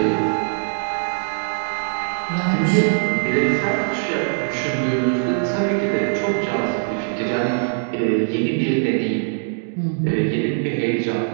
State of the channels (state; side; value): silent; left; digital silence